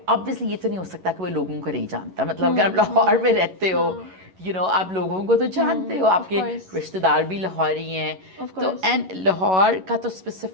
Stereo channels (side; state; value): left; late; 11 ms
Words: obviously ये तो नहीं हो सकता कि वो लोगों को नहीं जानता, मतलब अगर आप लाहौर में रहते हो, यू नो, आप लोगों को तो जानते हो, आपके रिश्तेदार भी लाहौरी हैं, तो एंड लाहौर का तो